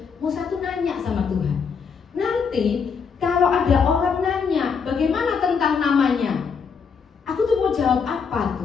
Musa tuh nanya sama Tuhan, nanti kalau ada orang nanya bagaimana tentang namanya, aku tuh mau jawab apa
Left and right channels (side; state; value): right; quieter; 5.9 dB